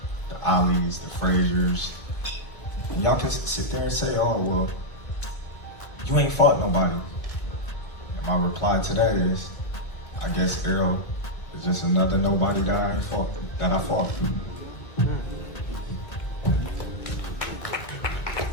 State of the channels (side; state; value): right; late; 1.7 ms